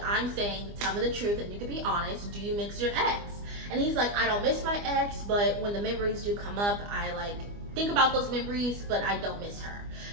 saying, tell me the truth and you can be honest. Do you miss your ex? And he's like, I don't miss my ex, but when the memories do come up, I like think about those memories, but I don't miss her.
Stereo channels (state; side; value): late; left; 25 ms